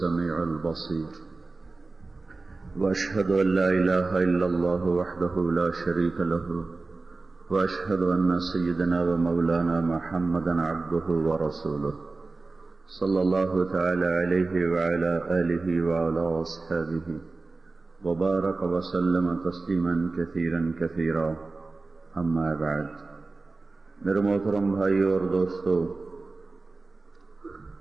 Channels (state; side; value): quieter; left; 3.6 dB